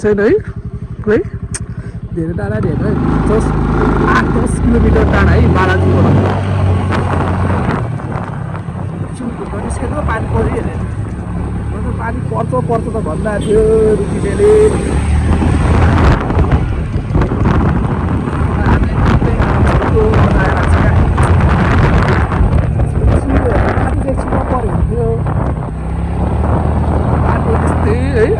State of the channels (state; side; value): identical; both; correlation 1.00